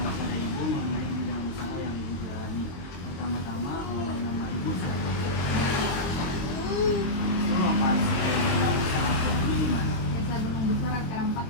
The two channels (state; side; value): late; right; 22 ms